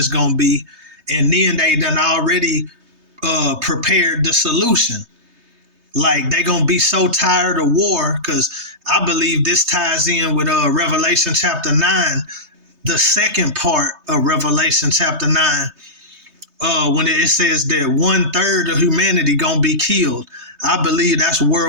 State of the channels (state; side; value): late; left; 3.2 ms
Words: gonna be, and then they done already prepared the solution. Like they gonna be so tired of war, because I believe this ties in with Revelation chapter 9, the second part of Revelation chapter 9, when it says that 1/3 of humanity gonna be killed. I believe that's